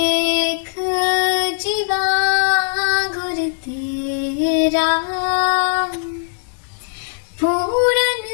जीवा गुर तेरा, पूरन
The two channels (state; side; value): silent; right; digital silence